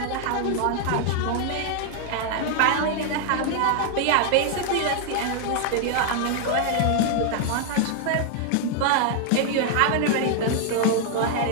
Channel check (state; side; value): different; both; correlation 0.00